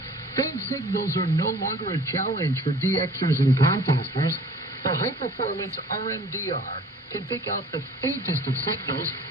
Faint signals are no longer a challenge for DXers and contesters. The high-performance RMDR can pick out the faintest of signals,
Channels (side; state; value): both; normal; correlation 0.48